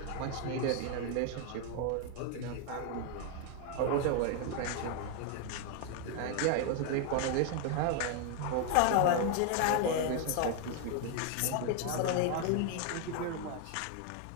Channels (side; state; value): both; different; correlation 0.00